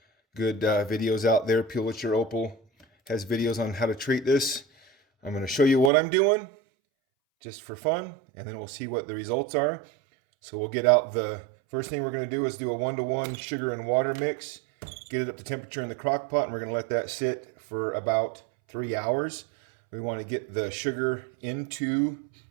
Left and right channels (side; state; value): left; drops out; at 5.9 s